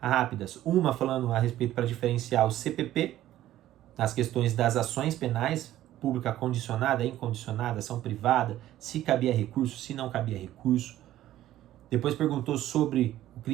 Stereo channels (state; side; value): quieter; left; 13.6 dB